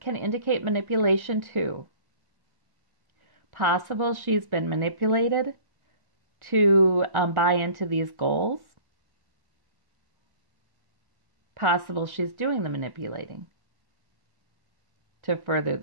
indicate manipulation too. Possible she's been manipulated to buy into these goals. Possible she's doing the manipulating to further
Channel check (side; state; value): left; late; 1.1 ms